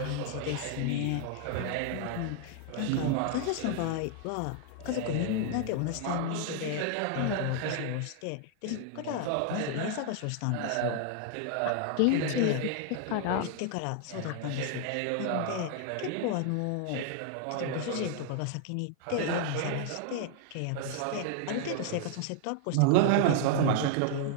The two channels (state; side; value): different; both; correlation 0.00